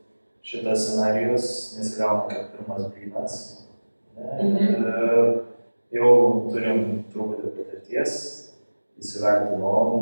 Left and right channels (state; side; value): inverted; both; correlation -1.00